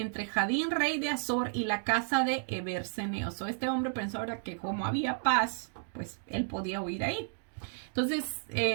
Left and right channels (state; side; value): silent; left; 56 dB below the other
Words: Jadín, rey de Azor, y la casa de Eber, Ceneo. Este hombre pensó, ¿verdad?, que como había paz, pues él podía huir ahí. Entonces,